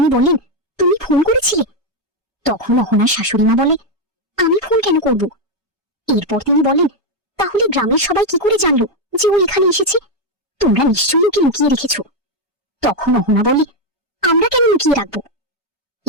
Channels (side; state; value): both; normal; correlation 0.04